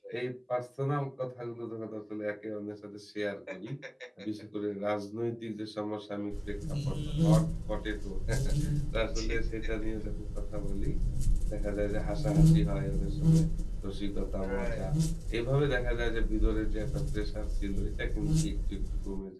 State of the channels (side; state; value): both; identical; correlation 1.00